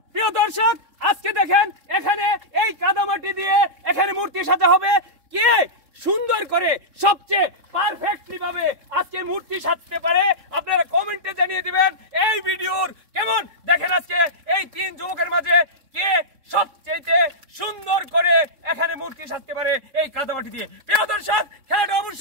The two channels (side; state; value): left; late; 3.6 ms